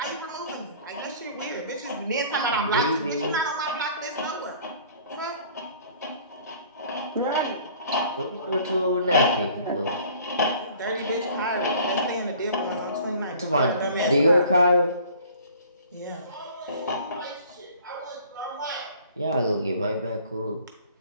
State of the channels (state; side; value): inverted; both; correlation -0.51